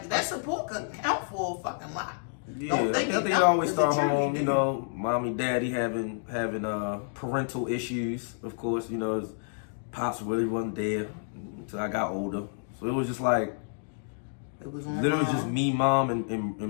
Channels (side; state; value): right; silent; digital silence